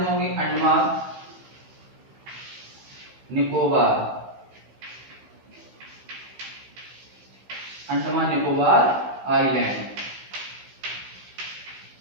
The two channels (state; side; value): late; left; 15 ms